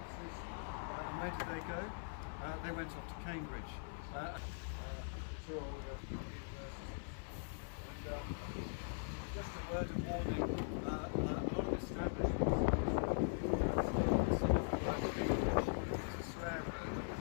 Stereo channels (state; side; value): silent; right; 50 dB below the other